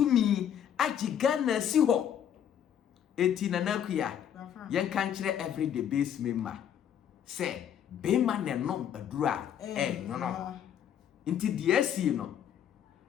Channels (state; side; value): quieter; right; 9.4 dB